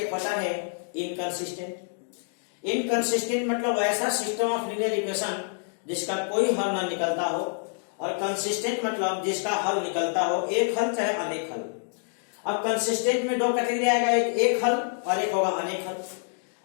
होता है इनकंसिस्टेंट। इनकंसिस्टेंट मतलब ऐसा सिस्टम ऑफ लीनियर इक्वेशन जिसका कोई हल ना निकलता हो, और कंसिस्टेंट मतलब जिसका हल निकलता हो, एक हल चाहे अनेक हल। अब कंसिस्टेंट में दो कैटेगरी आएगा, एक हल और एक होगा अनेक हल।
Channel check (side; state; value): right; silent; digital silence